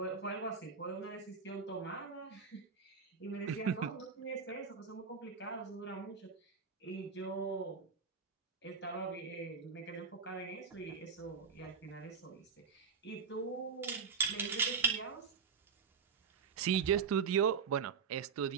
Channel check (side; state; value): left; quieter; 6.0 dB